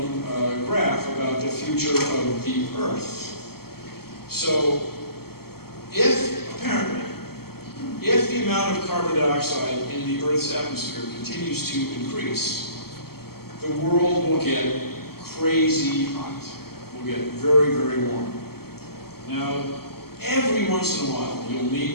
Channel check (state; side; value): late; right; 0.95 ms